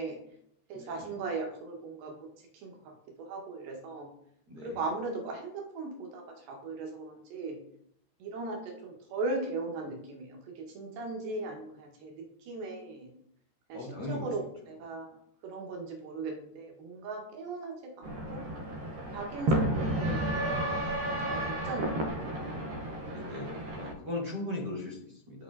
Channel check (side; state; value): left; late; 13 ms